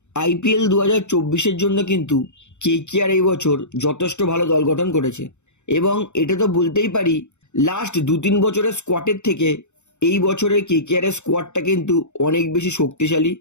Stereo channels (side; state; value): right; late; 0.83 ms